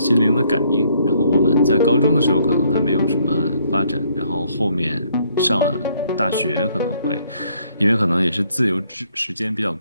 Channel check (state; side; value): inverted; both; correlation -0.67